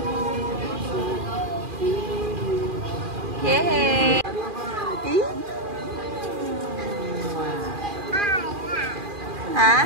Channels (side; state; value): left; late; 2.4 ms